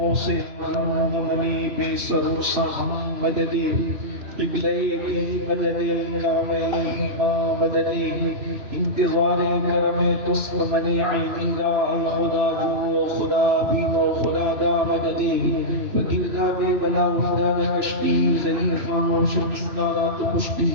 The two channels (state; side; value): late; left; 3.0 ms